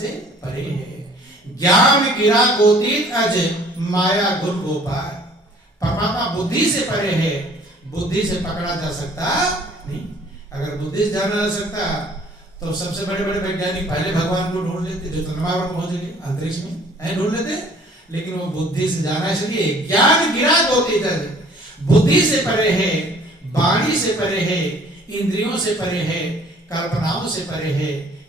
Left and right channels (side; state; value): both; normal; correlation 0.54